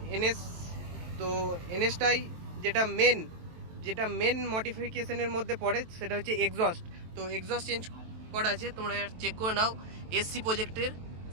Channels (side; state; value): left; late; 23 ms